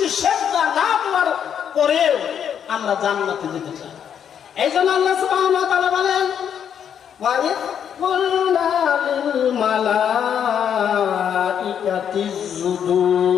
সেজদা না দেওয়ার পরেও আমরা জান্নাতে যেতে চাই। এই জন্য আল্লাহ সুবহানাহু ওয়া তাআলা বলেন, ওয়া ইয কুলনা লিল মালাইকাতি ইসজুদু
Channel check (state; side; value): quieter; right; 8.5 dB